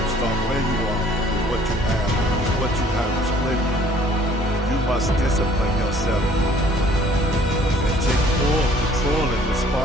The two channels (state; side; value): normal; both; correlation 0.57